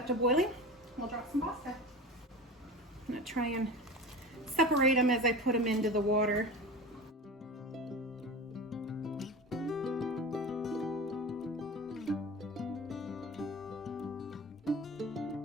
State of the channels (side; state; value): both; normal; correlation 0.32